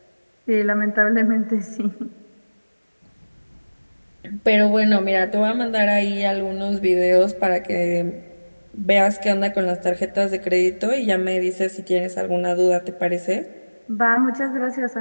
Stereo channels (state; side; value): inverted; both; correlation -1.00